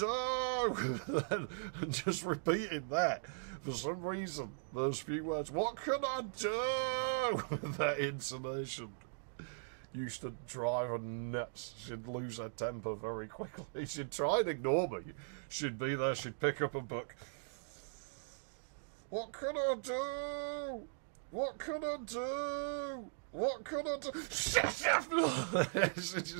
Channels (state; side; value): silent; left; digital silence